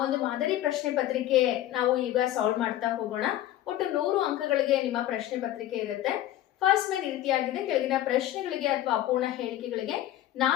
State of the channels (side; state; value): right; quieter; 13.4 dB